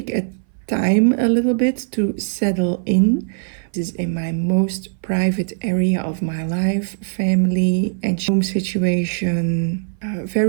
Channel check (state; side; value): silent; left; 59 dB below the other